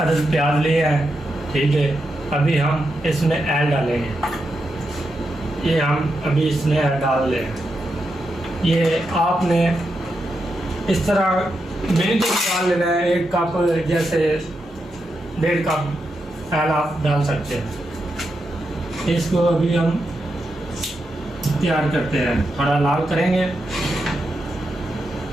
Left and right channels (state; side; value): normal; both; correlation 0.86